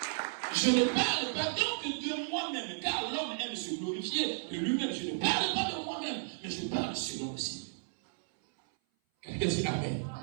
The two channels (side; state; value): left; silent; 55 dB below the other